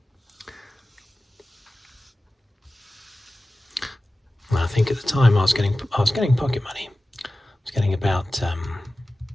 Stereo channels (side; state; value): both; normal; correlation 0.96